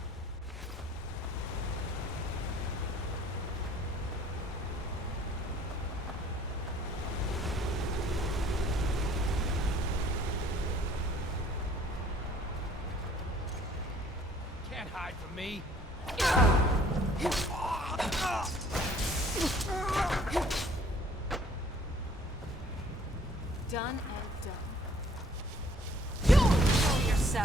Can't hide from me. Done and done. Control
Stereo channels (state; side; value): normal; both; correlation 0.57